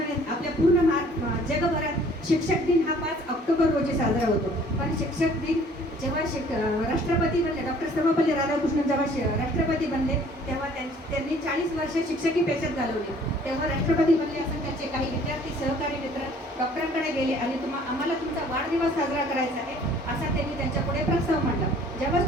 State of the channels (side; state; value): both; normal; correlation 0.55